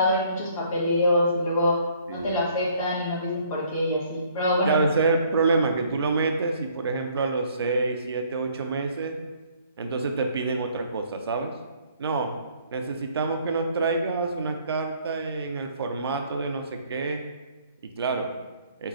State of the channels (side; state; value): both; inverted; correlation -0.61